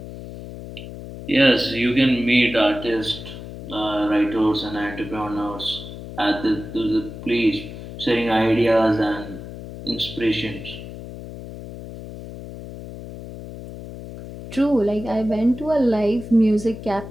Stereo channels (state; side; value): noise; left; hum, 12 dB below the sound